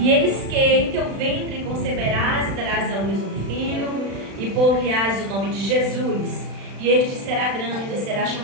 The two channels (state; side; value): late; left; 36 ms